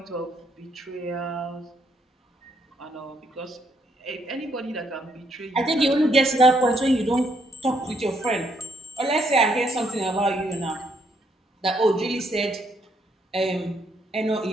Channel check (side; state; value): both; normal; correlation 0.72